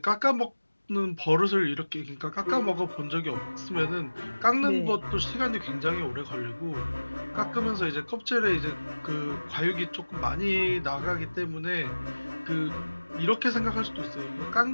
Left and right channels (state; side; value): inverted; both; correlation -1.00